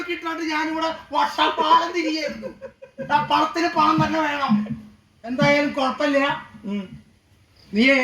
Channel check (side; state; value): both; identical; correlation 1.00